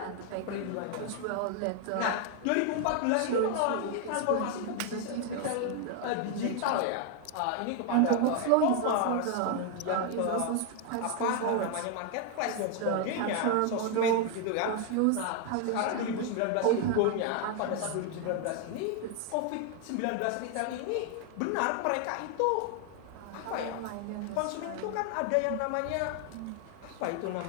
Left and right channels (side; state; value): both; different; correlation 0.00